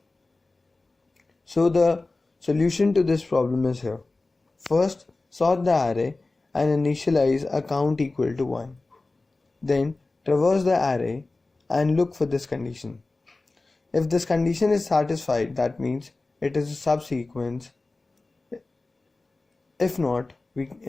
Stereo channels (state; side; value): quieter; right; 3.3 dB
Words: So the solution to this problem is here. First, sort the array and initialize a count equal to 1. Then traverse the array and look for this condition. If this condition is satisfied, that means it is a subsequence. If not, we